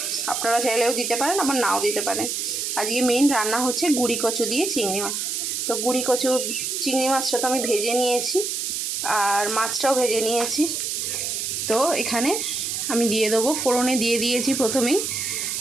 আপনারা চাইলেও দিতে পারেন, আবার নাও দিতে পারেন। আজকে মেইন রান্না হচ্ছে গুঁড়ি কচু দিয়ে চিংড়ি মাছ। তো গুঁড়ি কচু চিংড়ি মাছটা তো আমি ভেজে নিয়েছি, আর মাছটাও ভেজে নিয়েছি। তো এখানে আমি দিয়ে দেবো, ফোড়নে দিয়ে দিয়েছি প্রথমেই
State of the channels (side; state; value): right; noise; hiss, 2 dB below the sound